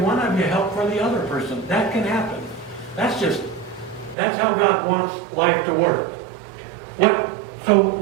of you help for the other person. That can happen. That's how God wants life to work. So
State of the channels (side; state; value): left; drops out; at 4.2 s